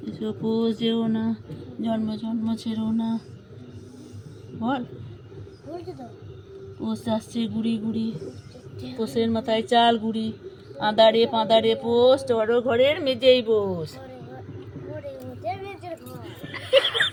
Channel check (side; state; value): both; identical; correlation 1.00